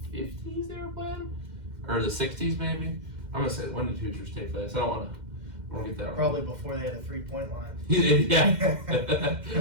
50s they were playing, or the 60s maybe. I'm gonna say, when did Hoosiers take place? I don't want to get that wrong. Probably before they had a 3-point line. Yeah.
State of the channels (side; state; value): left; late; 2.1 ms